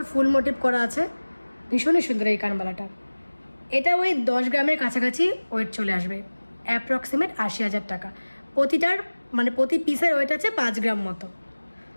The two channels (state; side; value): inverted; both; correlation -1.00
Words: ফুল মোটিভ করা আছে, ভীষণই সুন্দর এই কানবালাটা। এটা ওই 10 গ্রামের কাছাকাছি ওয়েট চলে আসবে, অ্যাপ্রক্সিমেট 80,000 টাকা। প্রতিটার মানে প্রতি পিসের ওয়েট আছে 5 গ্রাম মতো।